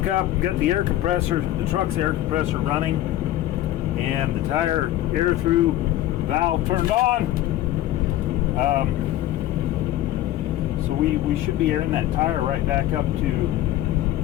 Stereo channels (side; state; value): right; quieter; 14.0 dB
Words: up, got the truck's air compressor running, and the tire air through valve turned on. So we should be airing that tire right back up to.